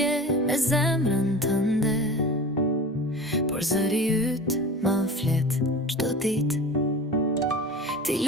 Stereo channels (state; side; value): normal; both; correlation 0.35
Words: me zemrën tënde, por zëri yt më flet çdo ditë. Ti